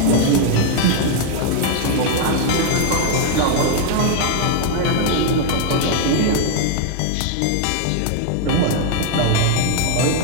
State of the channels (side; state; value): both; different; correlation 0.00